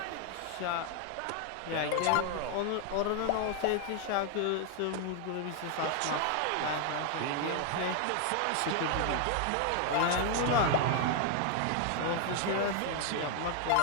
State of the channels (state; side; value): different; both; correlation 0.00